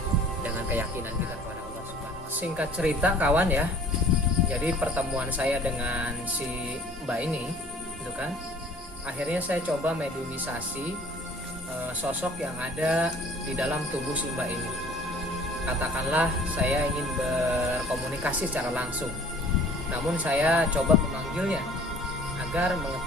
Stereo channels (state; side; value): normal; both; correlation 0.51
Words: dengan keyakinan kita kepada Allah Subhanahu wa Ta'ala. Singkat cerita kawan ya, jadi pertemuan saya dengan si mbak ini, gitu kan, akhirnya saya coba mediumisasi sosok yang ada di dalam tubuh si mbak ini. Katakanlah saya ingin berkomunikasi secara langsung, namun saya coba memanggilnya agar